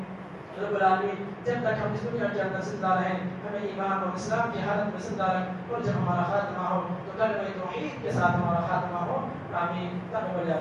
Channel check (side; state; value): both; identical; correlation 1.00